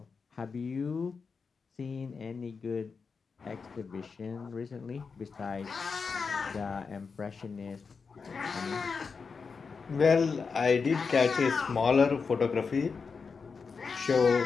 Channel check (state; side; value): quieter; right; 5.2 dB